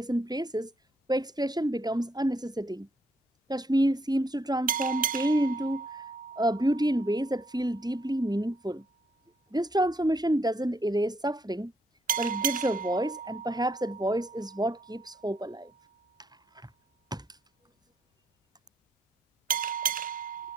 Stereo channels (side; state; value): both; normal; correlation 0.72